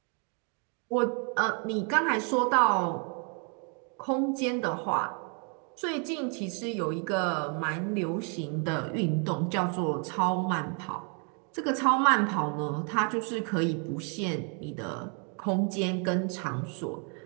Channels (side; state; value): left; quieter; 39.2 dB